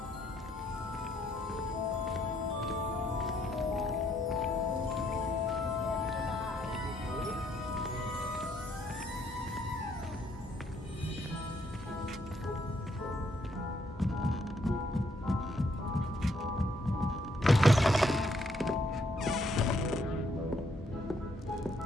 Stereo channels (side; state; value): both; normal; correlation 0.71